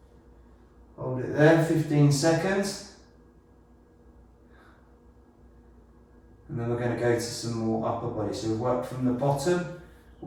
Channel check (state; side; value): identical; both; correlation 1.00